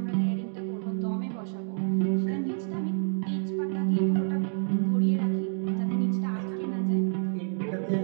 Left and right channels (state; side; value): silent; left; digital silence